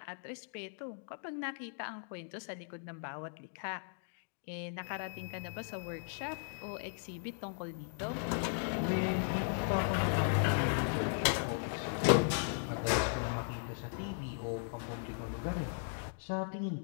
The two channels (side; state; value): right; silent; digital silence